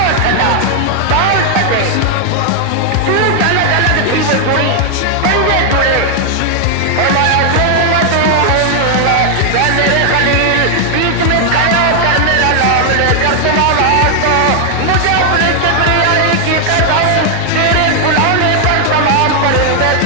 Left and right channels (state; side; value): different; both; correlation 0.00